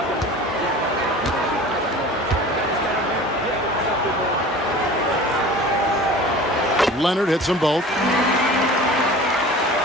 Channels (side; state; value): both; normal; correlation 0.40